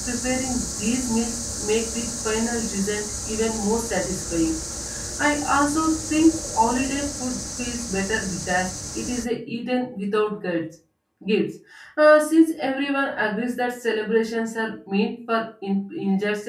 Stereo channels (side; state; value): both; identical; correlation 1.00